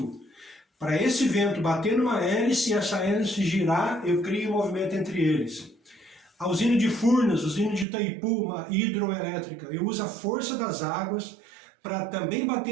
Para esse vento bater numa hélice e essa hélice girar, eu crio um movimento entre eles. A usina de Furnas, a usina de Itaipu, uma hidroelétrica, eu uso a força das águas para também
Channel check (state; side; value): drops out; left; at 7.9 s